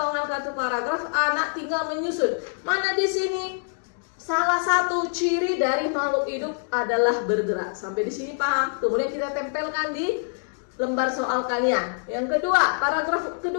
kartu paragraf, anak tinggal menyusun. Mana di sini? Salah satu ciri dari makhluk hidup adalah bergerak. Sampai di sini paham? Kemudian kita tempelkan di lembar soal kalian. Yang kedua, paragraf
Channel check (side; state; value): right; silent; digital silence